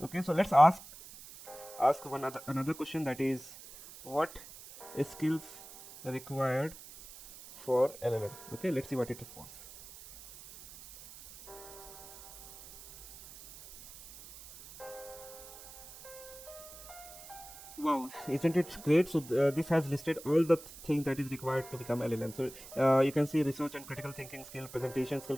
Okay, so let's ask another question, that is what skills required for LLM. Okay, let's see what it responds. Wow, isn't it great? So this has listed all the things that is required to become LLM. So you can see research and critical thinking skill, presentation skill,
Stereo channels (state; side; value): noise; right; hiss, 16 dB below the sound